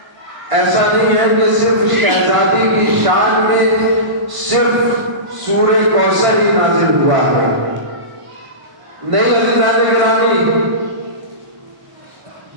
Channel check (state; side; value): late; left; 1.5 ms